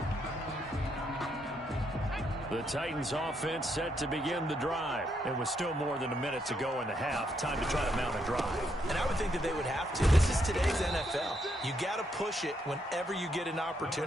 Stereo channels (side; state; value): both; normal; correlation 0.76